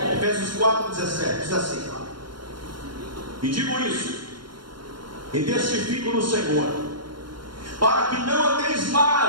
Efésios 4, 17. Diz assim: e digo isso, e testifico no Senhor, para que não andeis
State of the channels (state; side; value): late; left; 0.72 ms